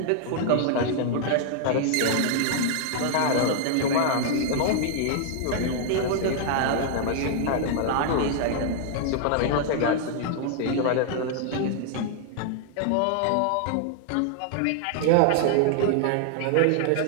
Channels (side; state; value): both; different; correlation -0.01